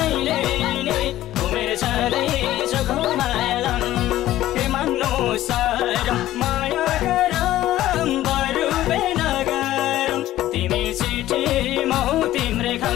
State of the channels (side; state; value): right; quieter; 14.3 dB